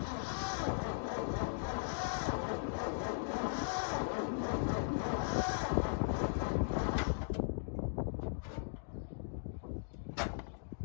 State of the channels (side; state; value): right; silent; digital silence